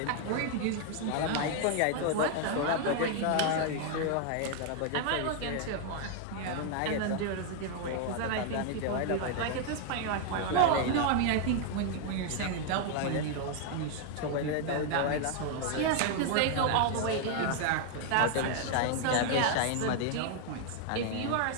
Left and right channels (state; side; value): different; both; correlation 0.00